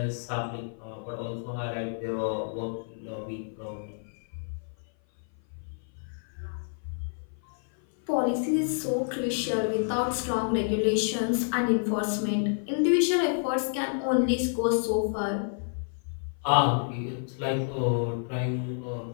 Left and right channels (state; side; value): silent; right; 56 dB below the other